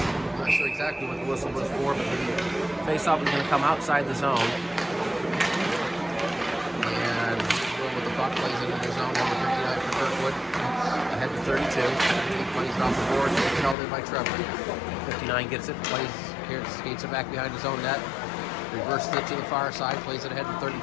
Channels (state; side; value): drops out; right; at 13.8 s